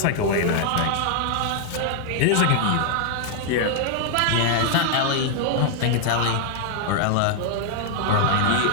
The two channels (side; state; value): both; different; correlation 0.00